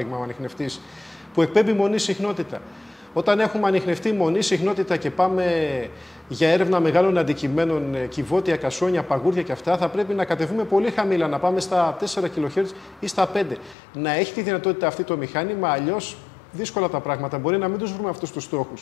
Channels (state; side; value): drops out; right; at 13.8 s